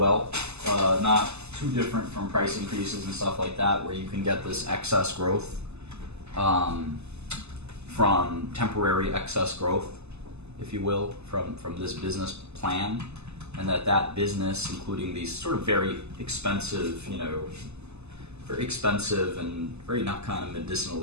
Not too different from price increases and stuff like that, where you can get this excess growth from temporary excess growth, if you will, from this business plan, and that business, including these sort of very expensive, and very not kind of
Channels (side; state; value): left; late; 0.80 ms